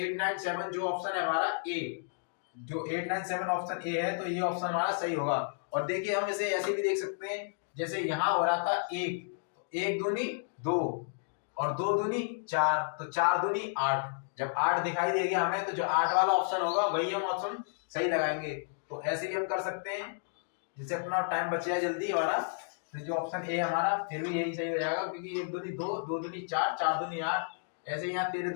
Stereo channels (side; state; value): right; silent; digital silence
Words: जो ऑप्शन है हमारा ए, जो 897 ऑप्शन ए है, तो ये ऑप्शन हमारा सही होगा। और देखिए हम इसे ऐसे भी देख सकते हैं, जैसे यहाँ हो रहा था 1, तो 1 दूनी 2 और 2 दूनी 4, तो 4 दूनी 8। जब 8 दिखाई देगा हमें तो जो 8 वाला ऑप्शन होगा वही हम ऑप्शन सही लगाएंगे। तो ऐसे भी हम कर सकते हैं, जिससे अपना टाइम बच जाए जल्दी हमारा। तो जो ऑप्शन ए हमारा फिर भी यही सही हो जाएगा, क्योंकि 1 दूनी 2, 2 दूनी 4, 4 दूनी 8। ऐसे यहाँ 13